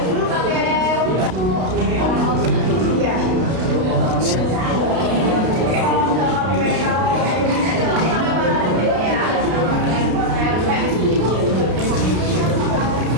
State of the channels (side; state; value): left; late; 32 ms